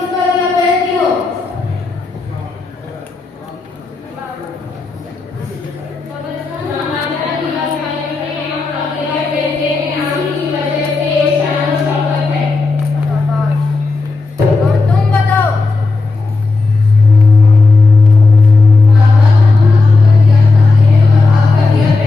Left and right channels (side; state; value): right; quieter; 3.7 dB